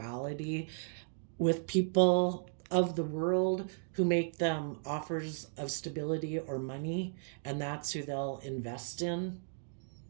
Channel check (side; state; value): left; silent; digital silence